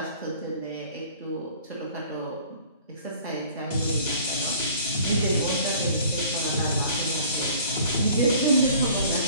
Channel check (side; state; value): both; inverted; correlation -0.51